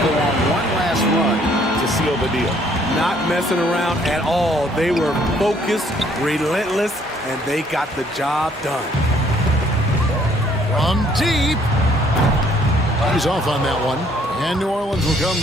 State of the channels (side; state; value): both; normal; correlation 0.63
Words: on one last run to seal the deal. Not messing around at all. They were focused, relentless, and they got the job done. From deep. He's off on that one. And New Orleans will come